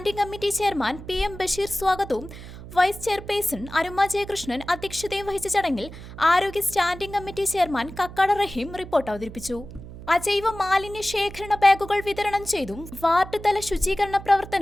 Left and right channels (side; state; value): right; noise; hum, 14 dB below the sound